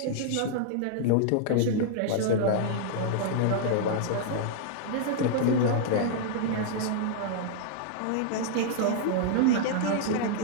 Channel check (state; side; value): different; both; correlation -0.01